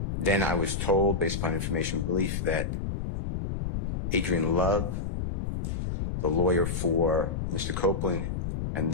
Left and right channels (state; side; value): noise; left; rumble, 3 dB below the sound